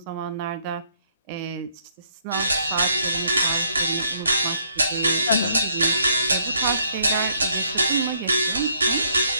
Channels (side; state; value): both; inverted; correlation -0.69